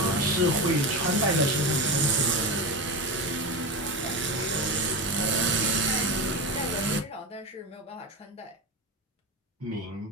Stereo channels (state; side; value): normal; both; correlation 0.21